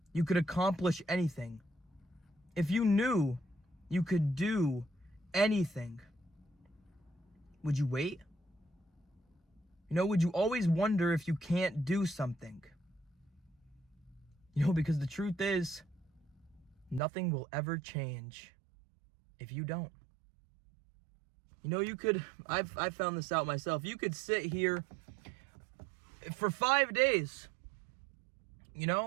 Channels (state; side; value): drops out; left; at 17.0 s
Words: you could accomplish anything, if you knew you could do anything, would you wait? Would you always wonder if you can't do something? Because the truth is, nothing will ever change if you don't. I've found this out myself. You could sit here for 5 days,